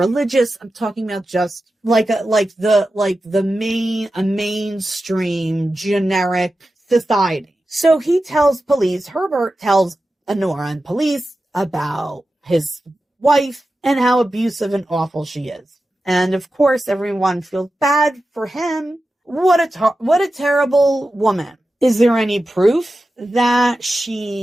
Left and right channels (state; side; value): normal; both; correlation 0.92